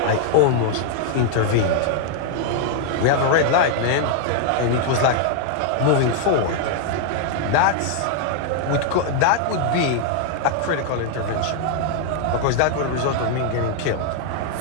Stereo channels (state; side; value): different; both; correlation 0.00